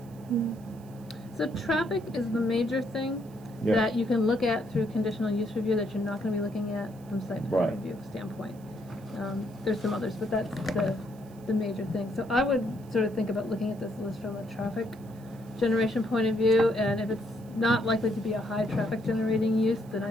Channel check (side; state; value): right; noise; hiss, 28 dB below the sound